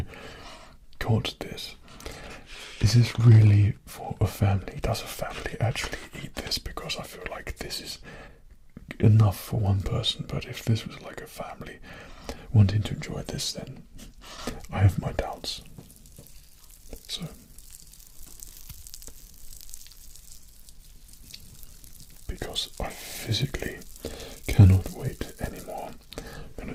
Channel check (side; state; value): both; identical; correlation 1.00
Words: got this, is this really for a family? Does a family actually eat this? Because I feel like this is enough for one person, but if this was like a family wanting to enjoy this, then I have my doubts. So because I physically cannot wait anymore, I'm gonna